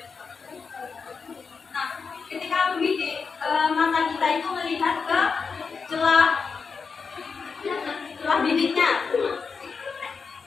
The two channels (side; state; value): right; quieter; 5.3 dB